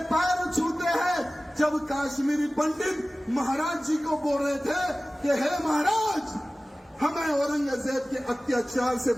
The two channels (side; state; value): both; normal; correlation 0.97